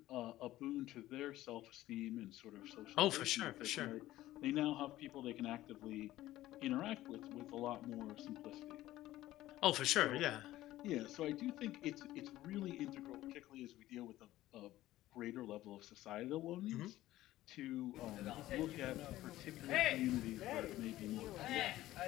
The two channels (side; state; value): right; quieter; 15.4 dB